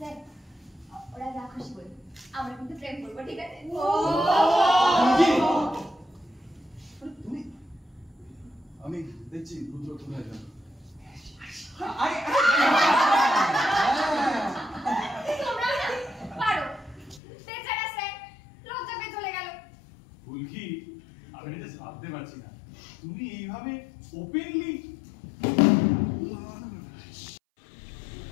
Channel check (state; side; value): drops out; right; at 17.2 s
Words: ওরা যা খুশি বলে আমরা কিন্তু প্রেম করবো ঠিক আছে তুমি আমি দেখছি রুদ্র কোথায় যাবে তোমরা না পারো বেচারা স্যার লজ্জা পেয়ে চলে গেল ফুলকি আমি এটা ভাবতে পারছি না তুমি এইভাবে ওপেনলি